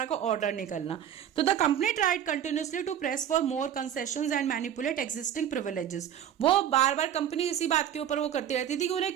का ऑर्डर निकलना। तो the company tried continuously to press for more concessions and manipulate existing privileges. वो बार बार कंपनी इसी बात के ऊपर वो करती रहती थी कि उन्हें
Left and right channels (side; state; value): left; quieter; 9.9 dB